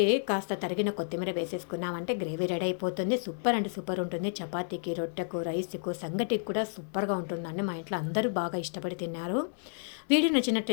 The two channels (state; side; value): silent; right; digital silence